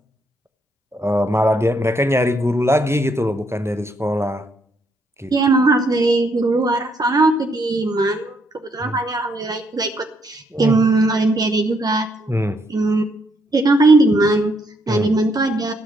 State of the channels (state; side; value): normal; both; correlation 0.73